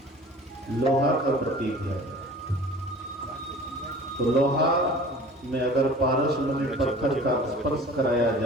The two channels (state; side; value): normal; both; correlation 0.44